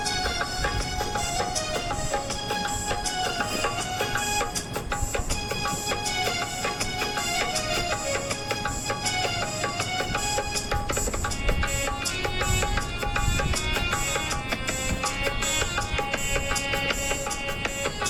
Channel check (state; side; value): identical; both; correlation 1.00